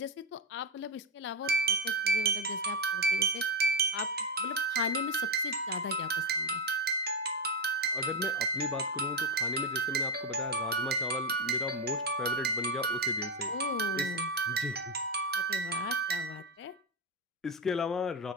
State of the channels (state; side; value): normal; both; correlation 0.08